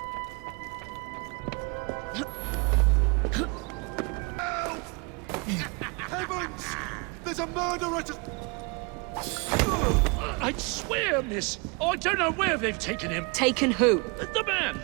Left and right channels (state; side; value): quieter; left; 30.8 dB